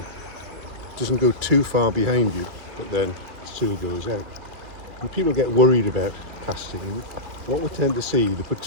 doesn't go too far behind you, but then still goes out. And people get worried about casting. And what we tend to see, they put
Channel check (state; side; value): late; left; 3.0 ms